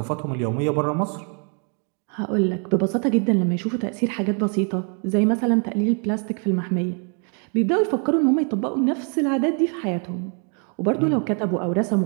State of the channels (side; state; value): left; quieter; 39.9 dB